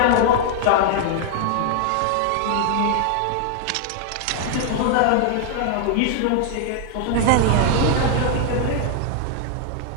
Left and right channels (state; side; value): different; both; correlation 0.00